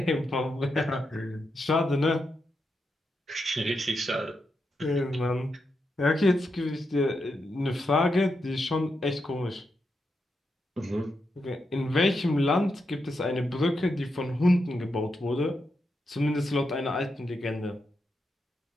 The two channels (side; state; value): both; normal; correlation 0.85